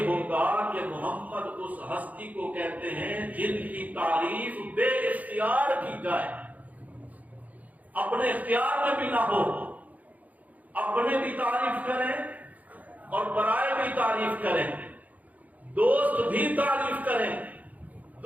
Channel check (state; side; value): late; left; 0.076 ms